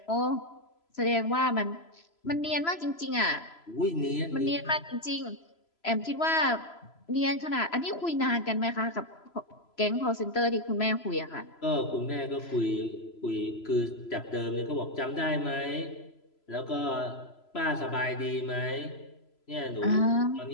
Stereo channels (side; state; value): right; late; 3.0 ms